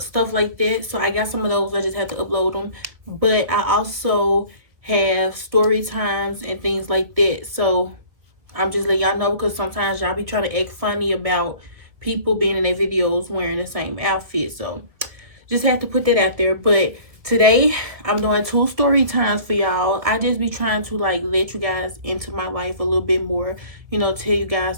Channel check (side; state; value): left; late; 1.9 ms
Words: like that. So I got some of those. I just had to upload them. But I also have story times and things like that. So I'm just letting y'all know because sometimes y'all be trying to act funny about people being in their videos wearing the same outfit. So just had to put that out there. But today I'm doing two story times for y'all. I just be trying to like let you guys into my life a little bit more, tell you